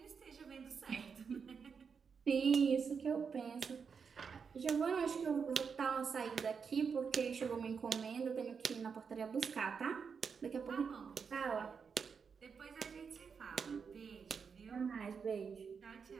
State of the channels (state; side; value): quieter; left; 6.0 dB